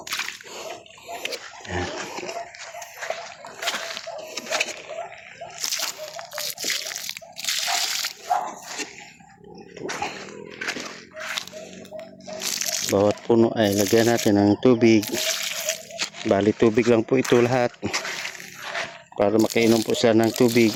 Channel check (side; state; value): both; identical; correlation 1.00